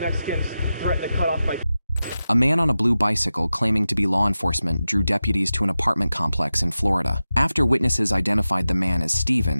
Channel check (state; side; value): inverted; both; correlation -0.93